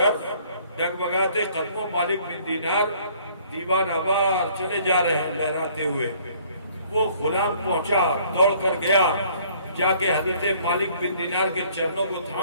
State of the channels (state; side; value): inverted; both; correlation -0.59